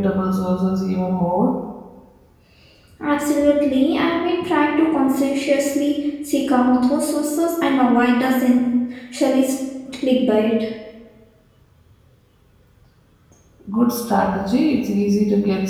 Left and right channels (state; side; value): identical; both; correlation 1.00